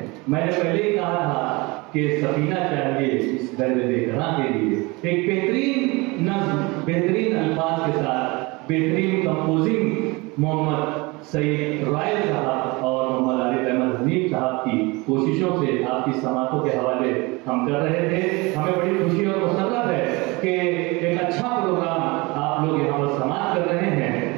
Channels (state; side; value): quieter; left; 25.0 dB